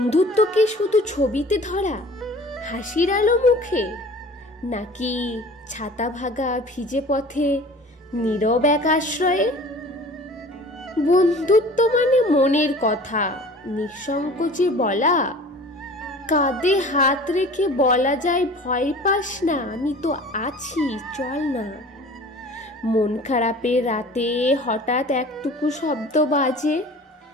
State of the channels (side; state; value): both; normal; correlation 0.44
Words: কি শুধু ছবিতে ধরা হাসির আলো মুখে, নাকি ছাতা ভাগা ভিজে পথে নীরব এক আশ্রয়ে? বন্ধুত্ব মানে মনের কথা নিঃসংকোচে বলা, কাঁধে হাত রেখে বলা যায় ভয় পাস না, আমি তো আছি, চল না। মন খারাপের রাতে হঠাৎ একটুকু শব্দ বাজে,